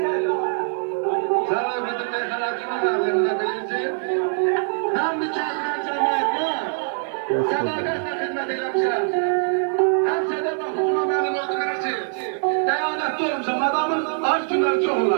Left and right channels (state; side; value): silent; left; 63 dB below the other